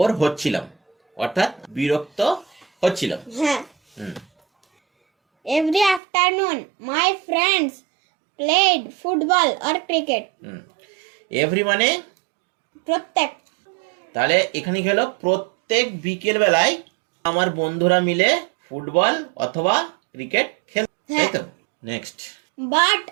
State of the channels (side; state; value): left; drops out; at 6.0 s